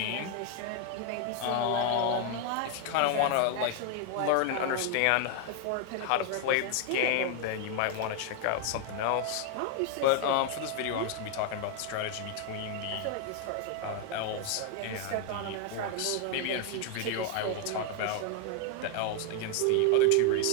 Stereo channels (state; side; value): different; both; correlation 0.00